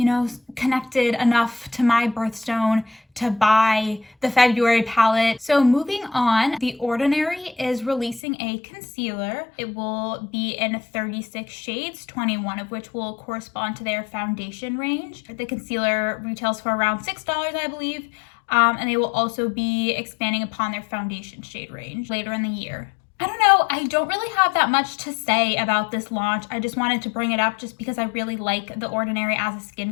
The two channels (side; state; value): right; drops out; at 8.2 s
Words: know, connected enough to my birthstone to buy the February palette. So moving on, The Ordinary is releasing a concealer. It will be in 36 shades, 21 of which will correspond to their foundation range. The concealer retails for around $6, I believe, and they will also be expanding upon their foundation shade range later in the year. I don't know, I don't really have that much to say about this launch. I just wanted to bring it up just because I really like The Ordinary as a